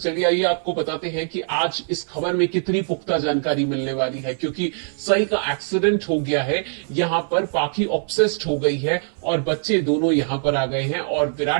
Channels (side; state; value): left; silent; digital silence